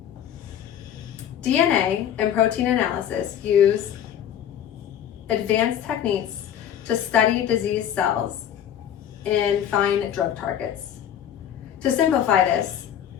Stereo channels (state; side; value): quieter; right; 9.9 dB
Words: DNA and protein analysis use advanced techniques to study disease cells and find drug targets. To simplify this,